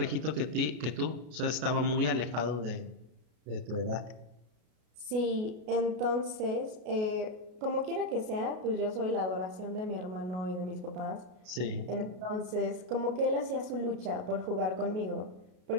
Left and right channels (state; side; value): late; left; 33 ms